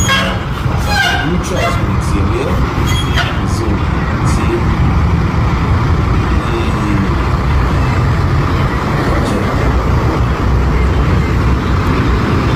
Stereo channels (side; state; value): both; identical; correlation 1.00